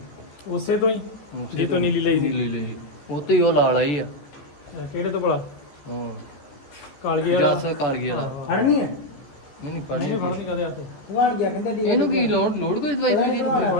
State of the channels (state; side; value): late; right; 14 ms